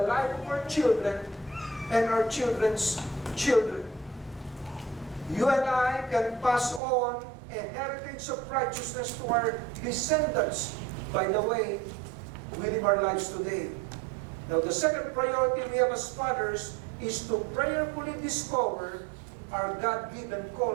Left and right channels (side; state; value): left; drops out; at 6.8 s